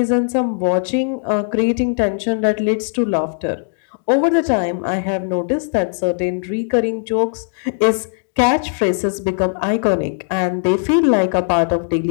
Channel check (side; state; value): right; silent; digital silence